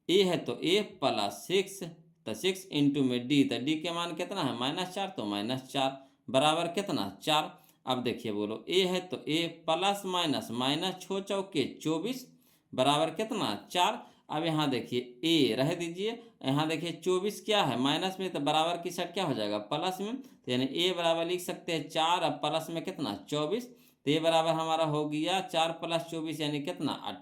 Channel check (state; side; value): identical; both; correlation 1.00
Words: ए है तो ए प्लस 6, तो 6 इंटू में डी, तो डी के मान कितना है -4, तो -4 बराबर कितना 4। अब देखिए बोलो ए है तो ए प्लस माइनस छो चौके 24 बराबर कितना 4। अब यहाँ देखिए ए रह दीजिए, यहाँ देखिए 24 क्या है माइनस में, तो बराबर की साइड क्या हो जाएगा प्लस में, तो यानी ए बराबर लिख सकते हैं 4, अब प्लस में कितना 24, तो ए बराबर हमारा हो गया 4 + 24 यानी कितना